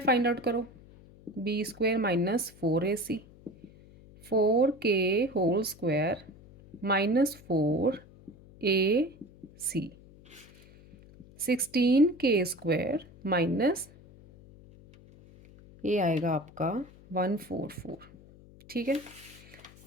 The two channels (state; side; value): noise; left; hum, 23 dB below the sound